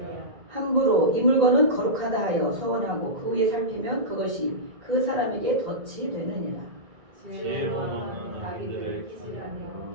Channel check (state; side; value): late; left; 1.9 ms